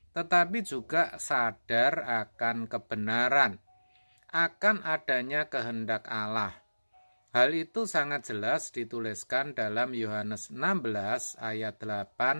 tetapi juga sadar akan kebenaran, akan adanya kehendak Allah. Hal itu sangat jelas dituliskan dalam Yohanes 16 ayat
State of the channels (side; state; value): both; inverted; correlation -1.00